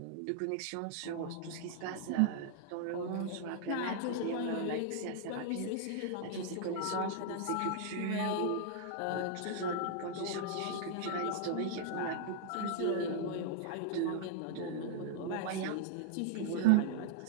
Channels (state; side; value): different; both; correlation -0.01